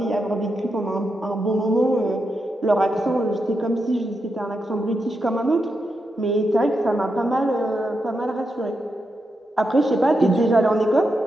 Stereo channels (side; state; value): both; normal; correlation 0.85